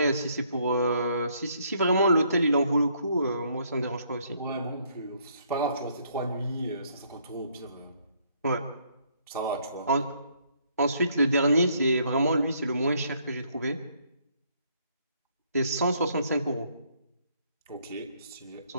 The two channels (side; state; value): both; inverted; correlation -0.68